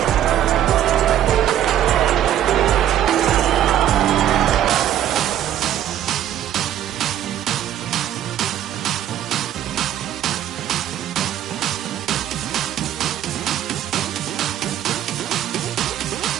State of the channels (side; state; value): left; quieter; 11.2 dB